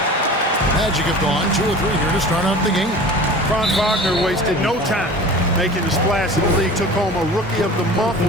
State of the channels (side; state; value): both; normal; correlation 0.39